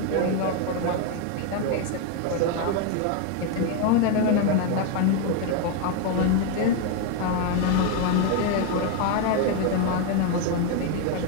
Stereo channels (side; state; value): both; different; correlation 0.01